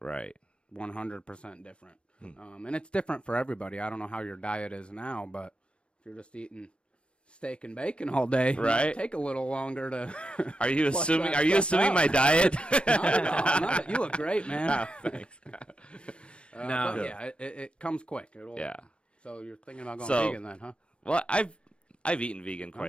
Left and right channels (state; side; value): late; right; 0.057 ms